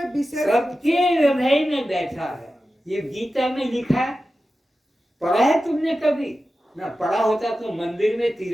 विशेष, सबके हृदय में बैठा है। ये गीता में लिखा है। पढ़ा है तुमने कभी? ना पढ़ा होता तो मंदिर में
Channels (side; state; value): both; normal; correlation 0.93